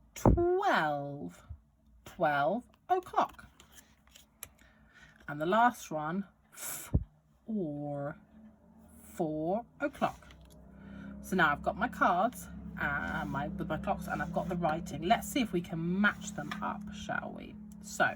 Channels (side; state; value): both; identical; correlation 1.00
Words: 12 o'clock. And the last one, 4 o'clock. So now I've got my cards with my clocks, and I've got the writing. Let's see if we can match them up, shall we? So